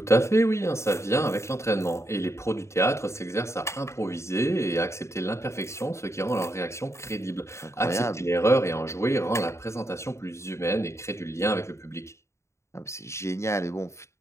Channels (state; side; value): late; right; 0.14 ms